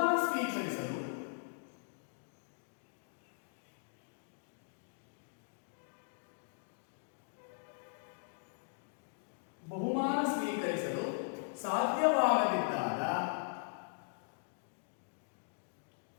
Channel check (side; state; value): right; silent; digital silence